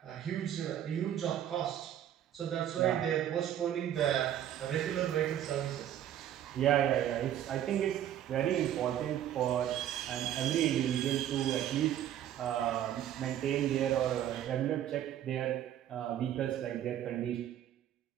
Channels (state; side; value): quieter; left; 11.1 dB